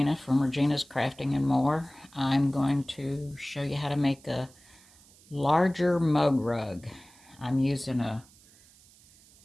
from Regina's Crafting and More. I'm going to show you how to make a larger mug rug. I'm using a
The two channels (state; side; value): noise; right; hiss, 26 dB below the sound